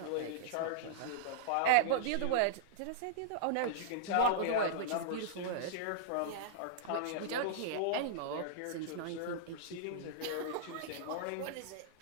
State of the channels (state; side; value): different; both; correlation -0.02